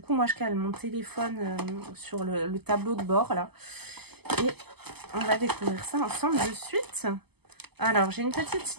moi, je cale mon téléphone sur le tableau de bord là. Et on va découvrir ça ensemble de suite. Alors, j'ai une petite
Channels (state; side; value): late; left; 0.98 ms